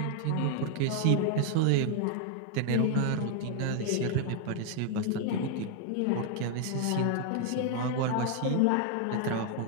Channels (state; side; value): different; both; correlation 0.00